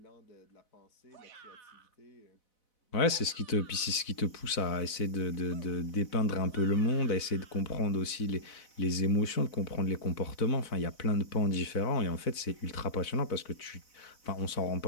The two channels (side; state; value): right; late; 4.0 ms